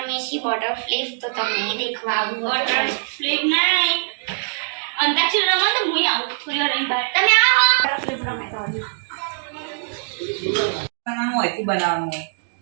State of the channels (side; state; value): left; silent; 64 dB below the other